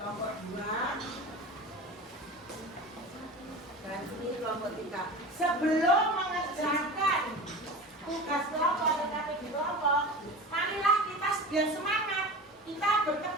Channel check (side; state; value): both; normal; correlation 0.32